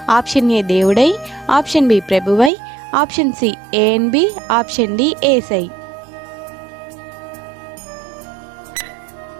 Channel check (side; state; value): left; drops out; at 2.5 s